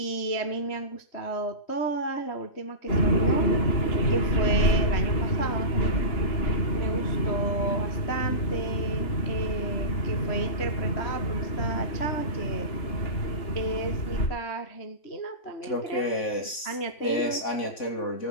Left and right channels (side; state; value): right; late; 3.5 ms